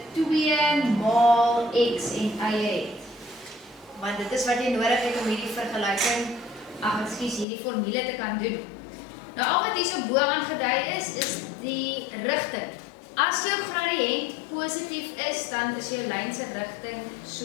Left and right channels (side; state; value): right; drops out; at 7.5 s